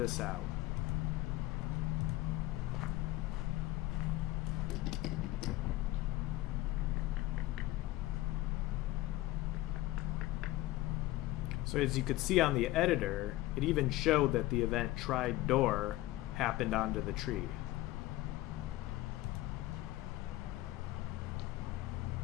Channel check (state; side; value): quieter; right; 17.2 dB